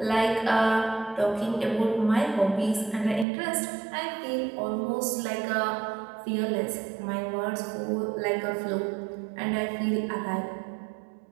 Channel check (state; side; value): drops out; left; at 3.2 s